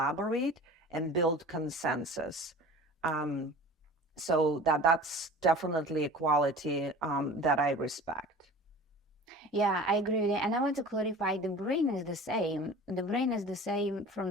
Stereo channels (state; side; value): normal; both; correlation 0.40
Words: and build consensus. So that's definitely a quality that I respect. Yeah, I agree with you. And I want to clarify, the brain is the same. The brain is the same from